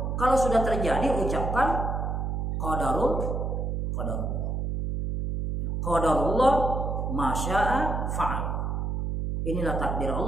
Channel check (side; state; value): right; noise; hum, 1 dB below the sound